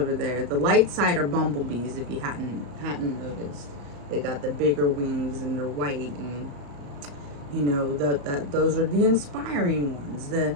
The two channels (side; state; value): left; late; 34 ms